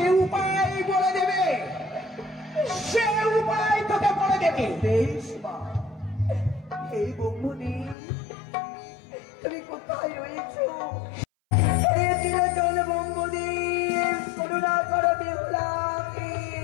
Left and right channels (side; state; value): right; drops out; at 8.0 s